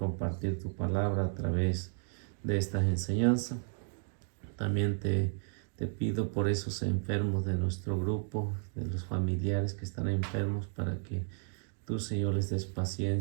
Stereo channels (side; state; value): left; silent; 56 dB below the other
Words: tu palabra a través de esta enseñanza. También te pido por esos enfermos de nuestro grupo, de los familiares que están enfermos, para que tú, Señor, les des